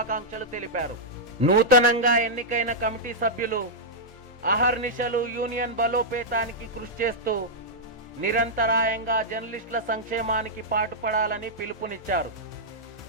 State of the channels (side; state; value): both; normal; correlation -0.08